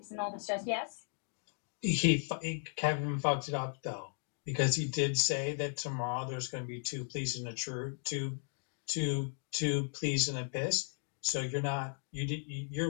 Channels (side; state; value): right; silent; 54 dB below the other